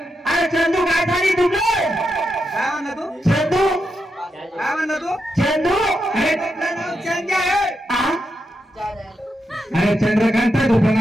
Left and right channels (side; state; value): both; normal; correlation 0.85